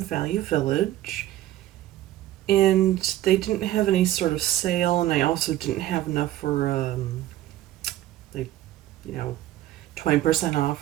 Village, and they didn't have any sort of sale, and I also didn't have enough for, like, you know, 20%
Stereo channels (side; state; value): left; quieter; 14.1 dB